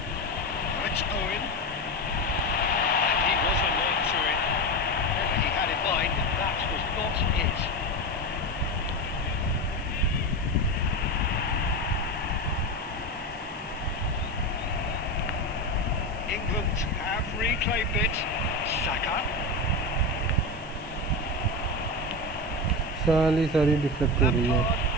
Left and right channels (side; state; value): right; noise; hiss, 25 dB below the sound